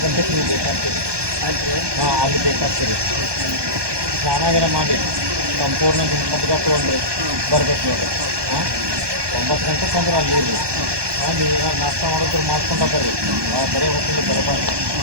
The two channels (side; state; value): left; late; 1.2 ms